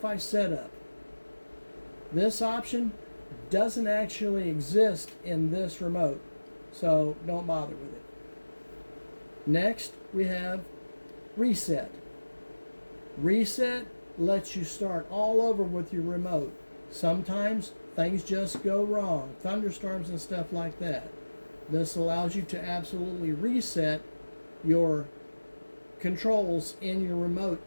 setup. This option doesn't actually exist in this remote, so don't bother with it. Next, we have reset. Reset lets you start all over with your remote. Sometimes things just go wrong, thunderstorms and stuff like that. This allows you to absolutely reset your controls in your remote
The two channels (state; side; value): inverted; both; correlation -1.00